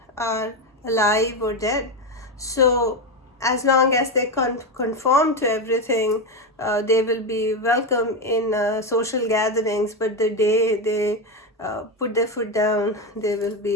are alive or dead. So as long as they conform to everything, they will be welcome in social gatherings, but the day they put their foot down, they will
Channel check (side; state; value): both; normal; correlation 0.12